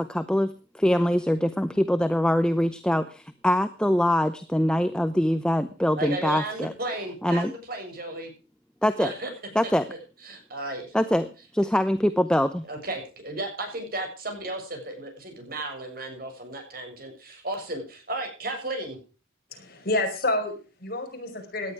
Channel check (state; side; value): normal; both; correlation 0.79